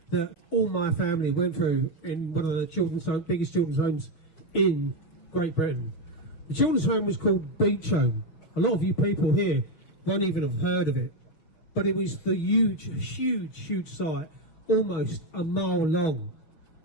that all my family went through in one of the biggest children's homes in Great Britain. The children's home was called Beach Home. A lot of you people here won't even have heard of it, but it was the huge site, almost a mile long.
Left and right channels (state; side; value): late; right; 6.2 ms